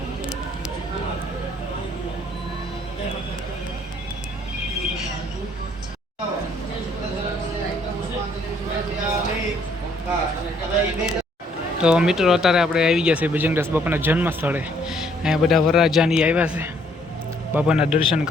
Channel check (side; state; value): both; normal; correlation 0.65